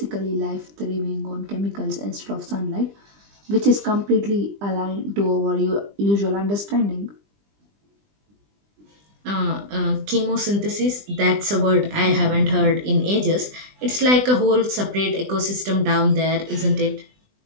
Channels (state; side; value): late; left; 20 ms